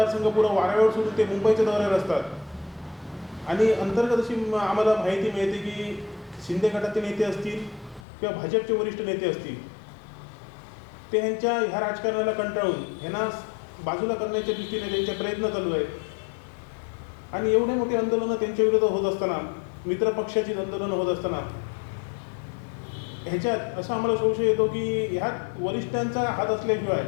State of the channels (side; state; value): right; drops out; at 8.0 s